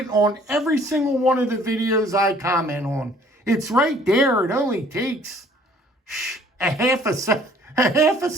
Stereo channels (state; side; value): normal; both; correlation 0.57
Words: on every single one of the videos I comment on. It's right there. It only takes a half a